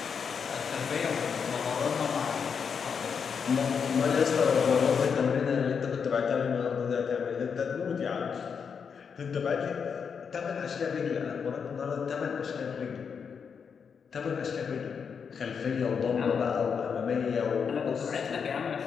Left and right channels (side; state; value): right; quieter; 6.4 dB